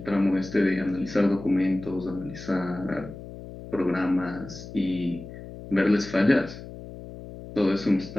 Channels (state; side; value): noise; left; hum, 13 dB below the sound